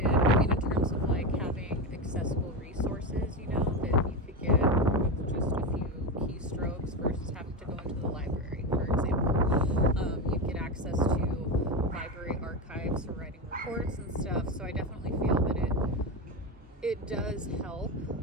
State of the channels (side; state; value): both; normal; correlation 0.16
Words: I mean, in terms of like having accessible resources, you know, that you could get with just a few keystrokes versus having to go into the library, for example. You get access to library archives for writing reports and stuff. So I definitely feel that it does help